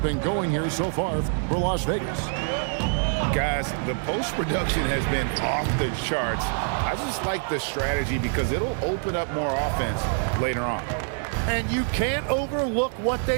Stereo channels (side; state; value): left; silent; 57 dB below the other